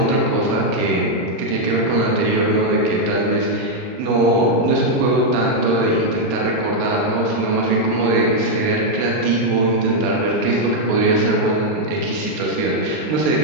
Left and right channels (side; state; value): left; late; 39 ms